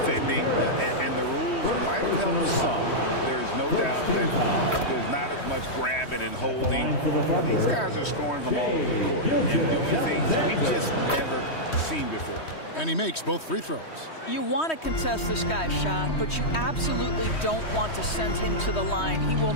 and the rules might have helped some. There's no doubt that there's not as much grabbing and holding. But these guys are scoring from all over the court and doing things we've just never seen before. And he makes both free throws. You want to contest this guy's shot, but you absolutely don't want to send him to the line. He will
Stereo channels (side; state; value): right; late; 3.1 ms